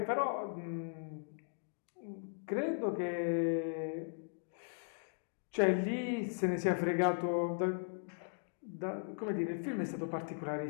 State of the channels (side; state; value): right; silent; digital silence